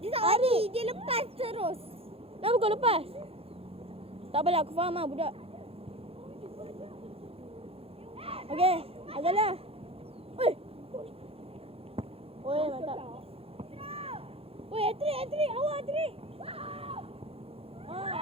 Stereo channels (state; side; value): late; left; 0.28 ms